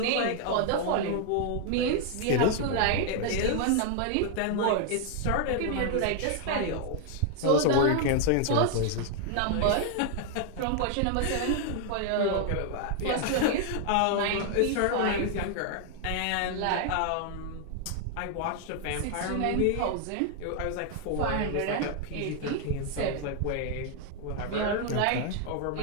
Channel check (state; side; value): different; both; correlation 0.00